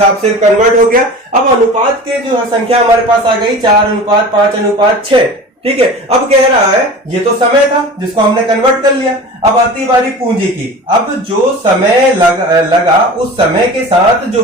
से कन्वर्ट हो गया। अब अनुपात के जो संख्या हमारे पास आ गई 4:5:6। ठीक है, अब कह रहा है ये तो समय था जिसको हमने कन्वर्ट कर लिया। अब आती बारी पूंजी की। अब जो समय लगा उस समय के साथ जो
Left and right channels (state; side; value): normal; both; correlation 0.36